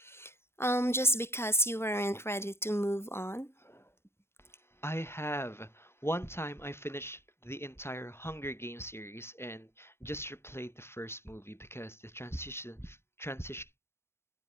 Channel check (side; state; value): right; late; 0.12 ms